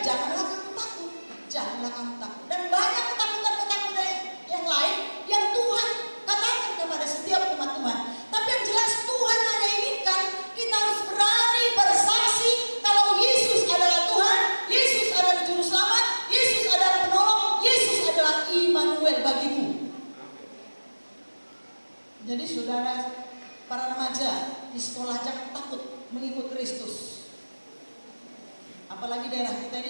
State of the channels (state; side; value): inverted; both; correlation -1.00